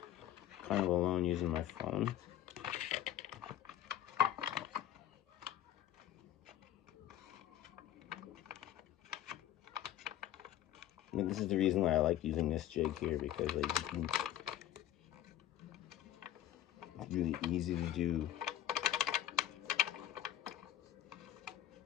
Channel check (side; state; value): right; quieter; 11.7 dB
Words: kind of alone using my phone. And this is the reason why I like using this jig here, because like it's really easy to do.